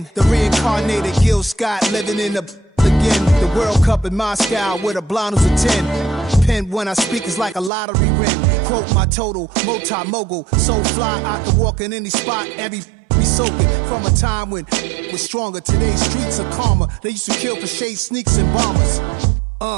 The reincarnated Gil Scott, living in the again. The World Cup in Moscow, with a blonde who's a 10. Pen when I speak is like a lottery win. Quote my total, multi-mogul, so fly, I can walk in any spot, every be soaking from a time when was stronger. Today's streets are calmer. They used to kill for shade sneaks and bombers.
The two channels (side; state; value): left; drops out; at 7.7 s